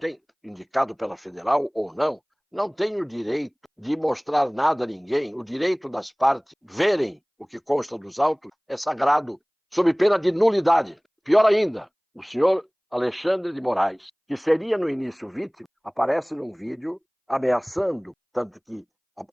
indicado pela Federal ou não tem o direito de mostrar nada a ninguém. O direito das partes verem o que consta dos autos é sagrado, sob pena de nulidade. Pior ainda, o senhor Alexandre de Moraes, que seria no início vítima, aparece num vídeo ameaçando, tanto que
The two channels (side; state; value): both; identical; correlation 1.00